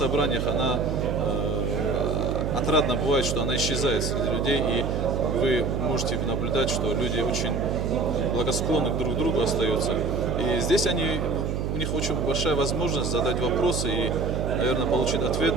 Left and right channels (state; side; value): noise; right; hum, 1 dB below the sound